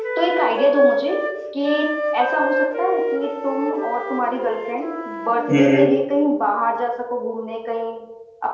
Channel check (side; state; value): both; identical; correlation 1.00